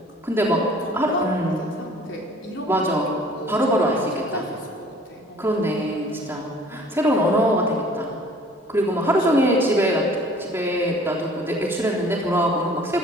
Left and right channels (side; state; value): both; normal; correlation 0.51